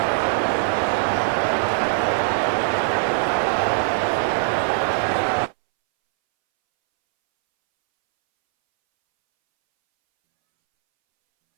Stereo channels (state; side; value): silent; left; 65 dB below the other